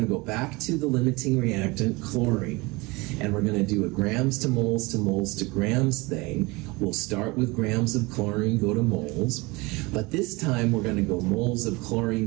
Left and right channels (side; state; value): left; quieter; 24.4 dB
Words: to go back to the limiting reactant, chlorine, and we're going to do a grams to moles to moles to grams thing. We'll start with grams of chlorine, go to moles, but this time we're going to go moles of